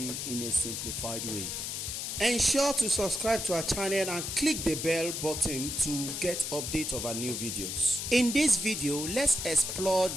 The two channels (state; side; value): noise; left; hiss, 4 dB below the sound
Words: in a simplified way. Ensure to subscribe to our channel and click the bell button to get update of our new videos. In this video, let's explore